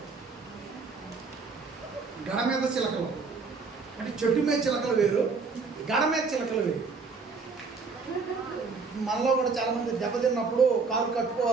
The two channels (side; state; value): left; quieter; 4.7 dB